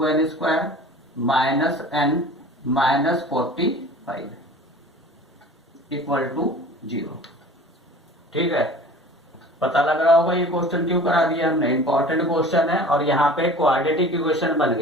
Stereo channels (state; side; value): normal; both; correlation 0.42